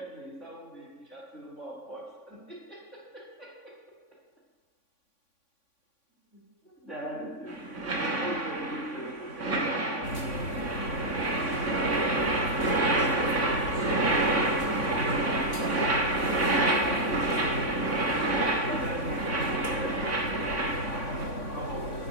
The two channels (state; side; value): late; right; 3.5 ms